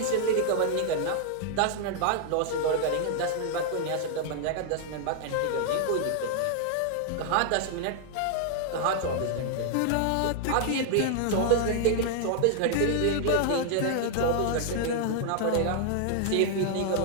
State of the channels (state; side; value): different; both; correlation 0.00